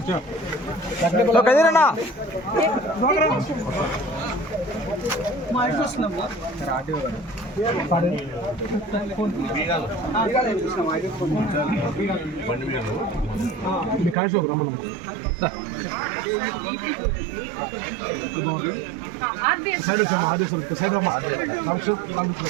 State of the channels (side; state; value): left; drops out; at 14.2 s